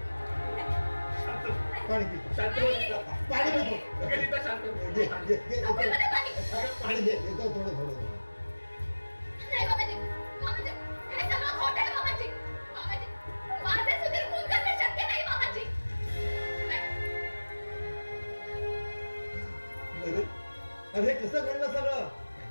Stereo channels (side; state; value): both; inverted; correlation -1.00